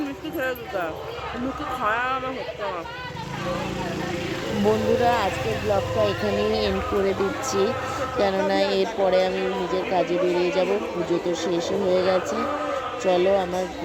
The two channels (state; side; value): identical; both; correlation 1.00